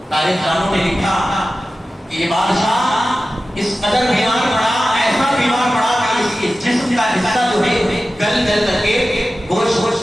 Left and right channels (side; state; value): both; normal; correlation 0.94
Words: تاریخ دانوں نے لکھا کہ یہ بادشاہ اس قدر بیمار پڑا, ایسا بیمار پڑا کہ اس کے جسم کا حصہ جو ہے گل کر کے